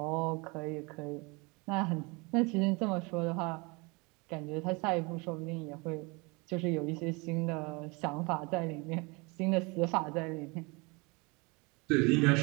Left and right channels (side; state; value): left; quieter; 27.9 dB